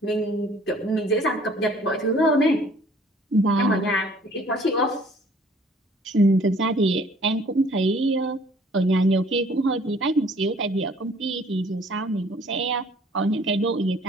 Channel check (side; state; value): both; normal; correlation 0.56